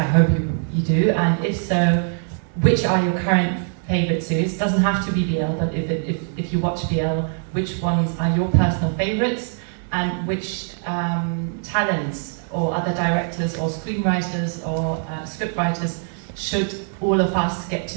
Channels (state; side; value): silent; left; 57 dB below the other